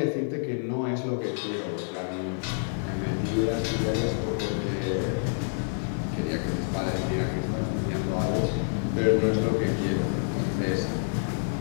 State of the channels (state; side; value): silent; right; 59 dB below the other